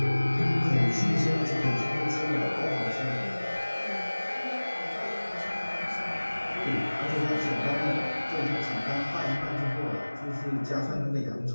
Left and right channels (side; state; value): both; inverted; correlation -1.00